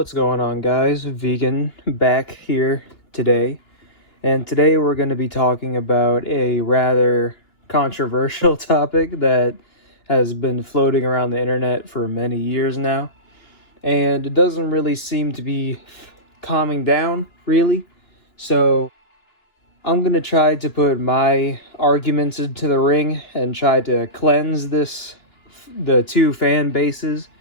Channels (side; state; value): right; late; 2.9 ms